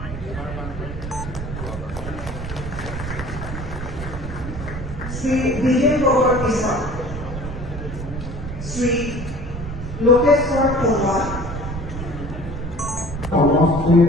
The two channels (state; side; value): noise; right; rumble, 7 dB below the sound